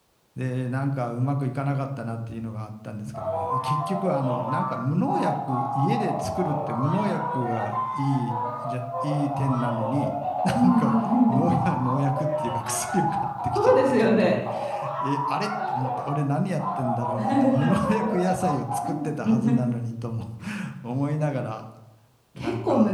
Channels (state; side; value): identical; both; correlation 1.00